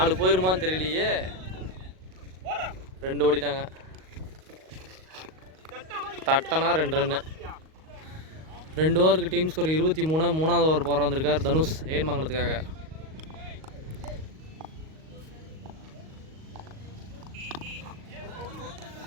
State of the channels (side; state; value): left; late; 38 ms